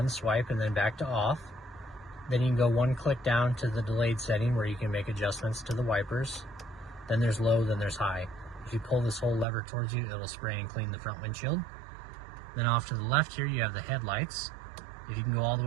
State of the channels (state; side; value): drops out; left; at 9.5 s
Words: swipe and then back to off. Then you can go one click down to the delayed setting where you can make adjustments to the wipers. Then there's low, then there's high. If you pull this whole lever towards you, it'll spray and clean the front windshield. Then off to the left here, you have the headlights. If you can go all the